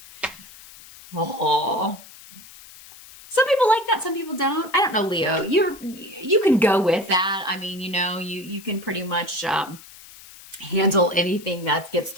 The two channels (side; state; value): left; noise; hiss, 19 dB below the sound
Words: Oh. Some people like that, some people don't. I don't know, Leo. You can go with that. I mean, you can pretty much handle anything that gets